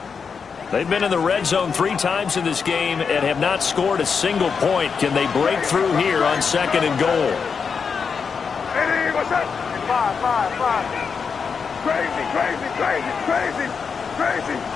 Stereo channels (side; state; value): right; quieter; 5.9 dB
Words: They've been in the red zone 3 times in this game and have not scored a single point. Can they break through here on 2nd and goal? Hey, what's up? Five. Crazy.